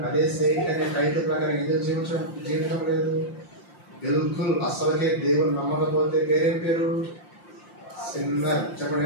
అదే సెయింట్ అనే టైటిల్ ప్రకారం ఎందుకు జీవించడం లేదు? బిల్కుల్ అసలుకే దేవుని నమ్మకపోతే పేరేం పేరు? సిన్నర్. చెప్పండి,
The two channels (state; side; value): late; right; 5.7 ms